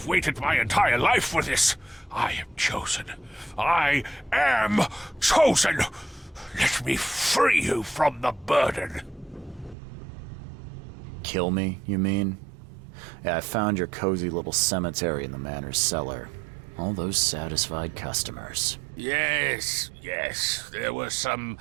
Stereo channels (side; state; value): left; drops out; at 9.8 s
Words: waited my entire life for this. I am chosen. I am chosen. Let me free you from the burden. Kill me, you mean? Yeah, I found your cozy little cemetery in the manor's cellar. All those satisfied customers. Yes, there were some